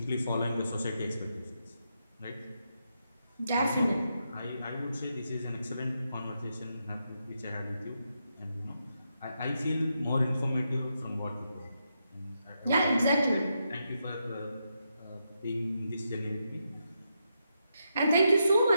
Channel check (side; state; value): both; inverted; correlation -0.83